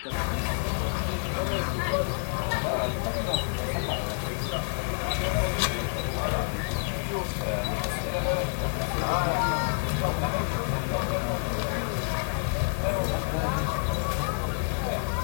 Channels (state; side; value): silent; right; 59 dB below the other